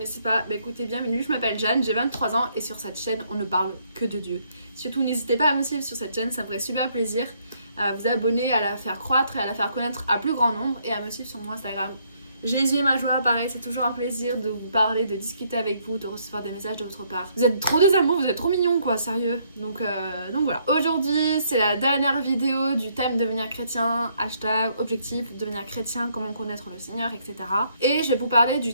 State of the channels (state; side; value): inverted; both; correlation -0.69